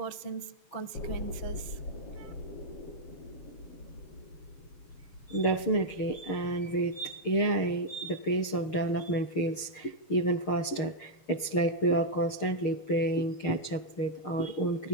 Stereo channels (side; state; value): right; late; 6.6 ms